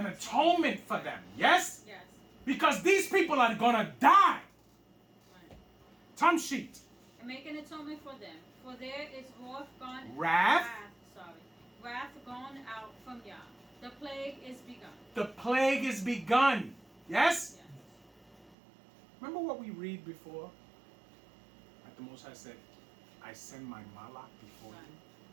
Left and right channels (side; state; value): left; drops out; at 18.5 s